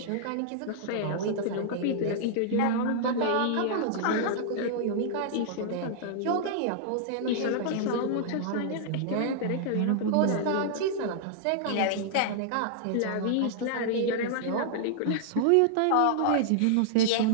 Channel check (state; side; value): different; both; correlation -0.01